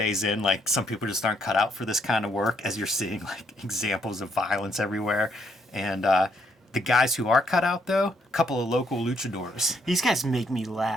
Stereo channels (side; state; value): both; normal; correlation 0.73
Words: in. Like, some people just aren't cut out for this kind of work, as you're seeing like examples of violence everywhere. And the guys who are cut out, though, a couple of local luchadors. These guys make me